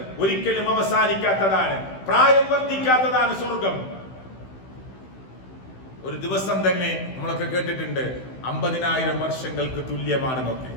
ഒരിക്കലും അവസാനിക്കാത്തതാണ്, പ്രായം വർദ്ധിക്കാത്തതാണ് സ്വർഗം. ഒരു ദിവസം തന്നെ നമ്മളൊക്കെ കേട്ടിട്ടുണ്ട് 50,000 വർഷങ്ങൾക്ക് തുല്യമാണെന്നൊക്കെ.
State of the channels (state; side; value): late; right; 16 ms